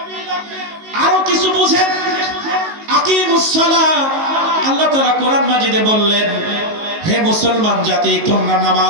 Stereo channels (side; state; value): left; late; 19 ms